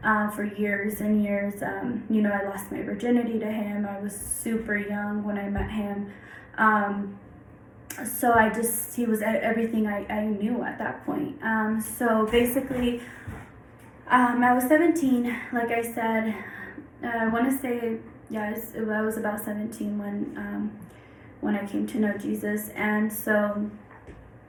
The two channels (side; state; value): both; identical; correlation 1.00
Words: for years and years, I lost my virginity to him. I was super young when I met him. So he was everything I knew at that point. So basically, I was 17, like I said. I want to say, I was about 17 when I came to know Jesus. And so